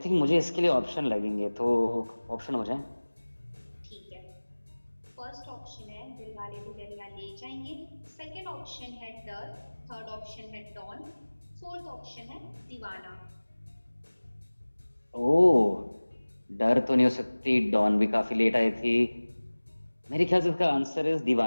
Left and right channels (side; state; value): both; inverted; correlation -1.00